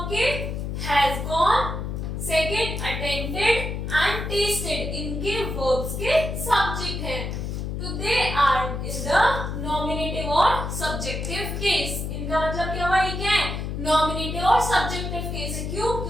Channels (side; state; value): left; noise; hum, 4 dB below the sound